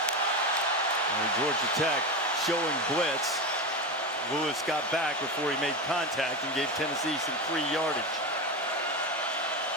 And Georgia Tech showing blitz. Lewis got back before he made contact and gave Tennessee some free yardage.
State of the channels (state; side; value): normal; both; correlation 0.19